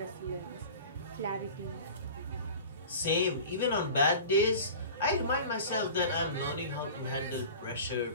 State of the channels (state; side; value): inverted; both; correlation -0.38